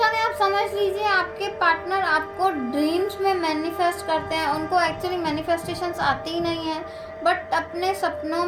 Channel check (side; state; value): both; identical; correlation 1.00